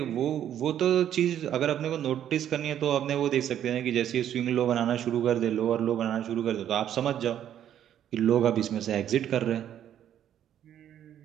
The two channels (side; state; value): left; quieter; 10.5 dB